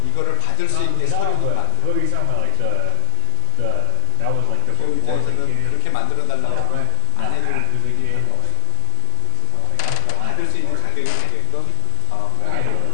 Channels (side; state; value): both; different; correlation 0.01